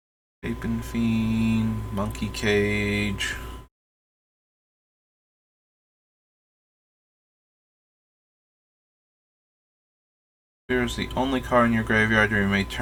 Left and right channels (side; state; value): both; identical; correlation 1.00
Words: Apin Fiend, Monkey Cage. Here's the only card in your graveyard, you may